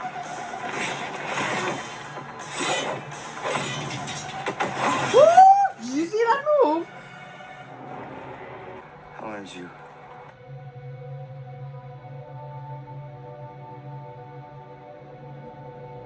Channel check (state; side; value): identical; both; correlation 1.00